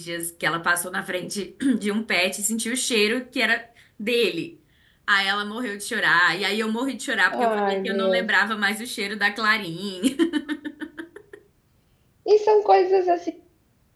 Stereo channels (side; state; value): both; identical; correlation 1.00